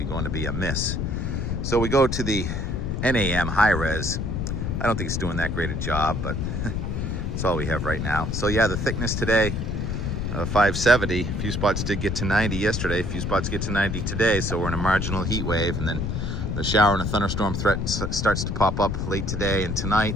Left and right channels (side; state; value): left; noise; rumble, 2 dB below the sound